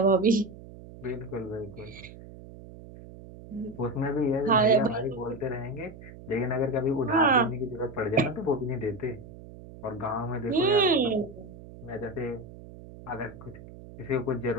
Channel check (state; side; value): noise; right; hum, 17 dB below the sound